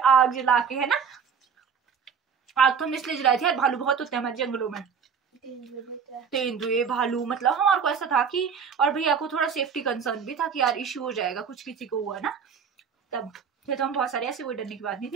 जला के, है ना। आग तो हम इसलिए जलाई थी यार, भालू बहुत होते हैं हमारे जंगलों में, तेंदुए भालू, मतलब हमारे को ऐसा था कि, और भैया को थोड़ा सेफ्टी कंसर्न भी था कि यार इश्यू हो जाएगा कुछ किसी को हुआ ना, तब तो हम बहुत सारे, ऐसे कोई डरने की बात नहीं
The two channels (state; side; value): quieter; left; 6.6 dB